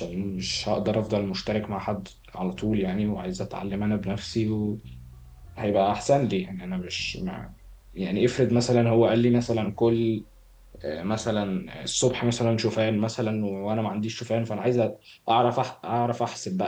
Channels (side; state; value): both; identical; correlation 1.00